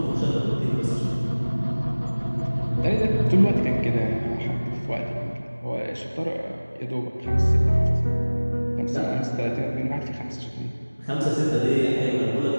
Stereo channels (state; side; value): inverted; both; correlation -1.00